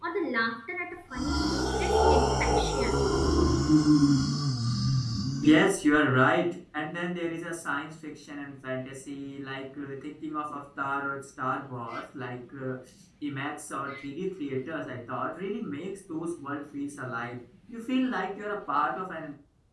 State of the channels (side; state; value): both; identical; correlation 1.00